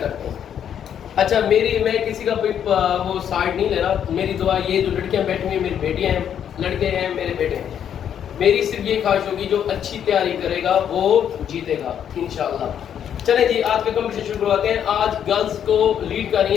हैं। अच्छा, मैं किसी का कोई वो साइड नहीं ले रहा। मेरी दुआ ये जो लड़कियां बैठी हुई हैं मेरी बेटियां हैं, लड़के हैं मेरे बेटे हैं, मेरी सिर्फ ये ख्वाहिश होगी जो अच्छी तैयारी करेगा वो जीतेगा इंशाल्लाह। चलें जी, आज का कंपटीशन शुरू करवाते हैं। आज गर्ल्स को लीड कर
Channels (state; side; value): quieter; right; 9.1 dB